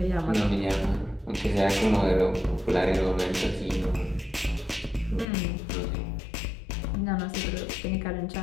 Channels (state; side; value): drops out; right; at 5.2 s